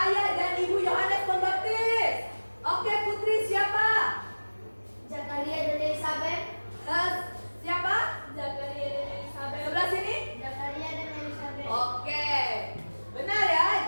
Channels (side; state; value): both; inverted; correlation -1.00